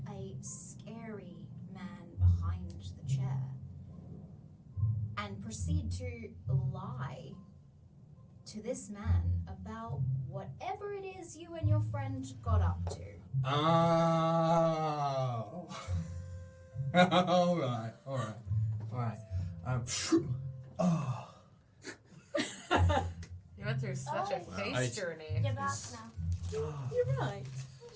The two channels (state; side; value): identical; both; correlation 1.00